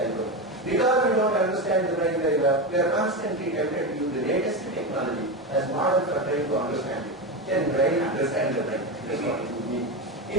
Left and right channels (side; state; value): both; normal; correlation 0.17